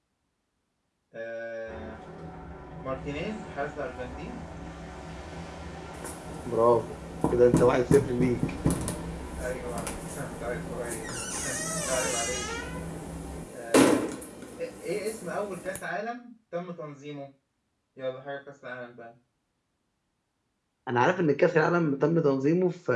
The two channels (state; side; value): identical; both; correlation 1.00